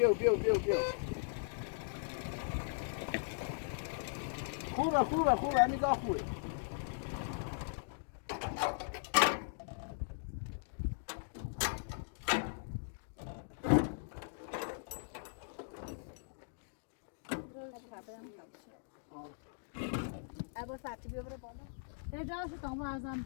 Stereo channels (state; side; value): silent; right; digital silence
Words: خوبه همین دا خوبه ابو فاتی بیا برو بالا. اجازه تام ارزم